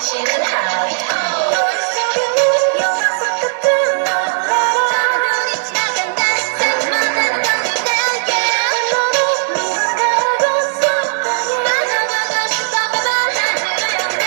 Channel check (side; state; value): left; silent; digital silence